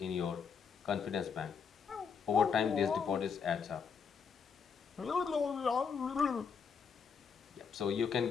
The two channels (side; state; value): right; quieter; 6.3 dB